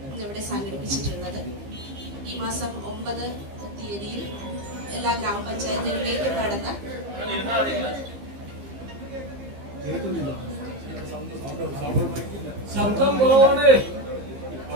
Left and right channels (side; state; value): left; late; 15 ms